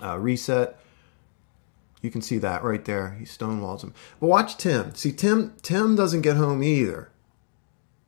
reset. You can see that right there. He stonewalls him. But watch Tim. See, Tim doesn't get home either.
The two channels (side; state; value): right; silent; digital silence